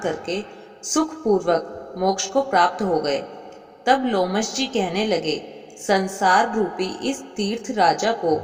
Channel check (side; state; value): both; identical; correlation 1.00